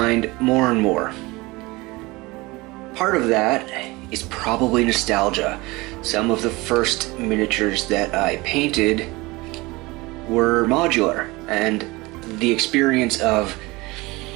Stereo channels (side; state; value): left; quieter; 22.6 dB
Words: more and more. Part of that is probably nostalgia. Some of the first miniatures that I painted were modular, and the experience of